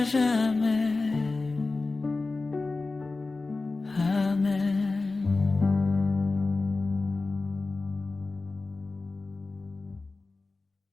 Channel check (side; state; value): right; quieter; 3.6 dB